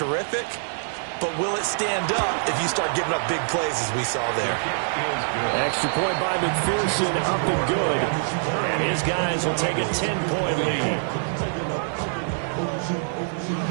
but will it stand up if you start giving up big plays as we saw there? Extra point by McPherson, up and good. And his guys will take a 10-point lead.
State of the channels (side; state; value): left; silent; 62 dB below the other